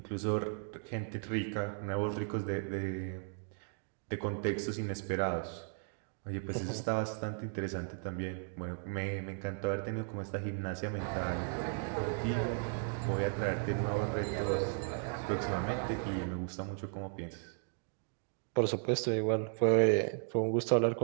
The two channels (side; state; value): left; silent; 54 dB below the other